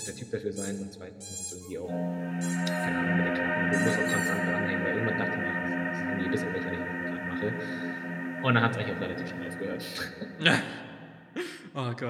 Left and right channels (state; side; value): identical; both; correlation 1.00